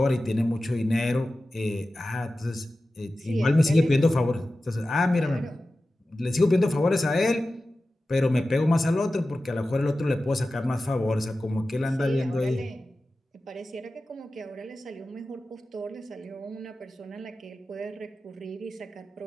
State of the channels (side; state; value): both; normal; correlation 0.94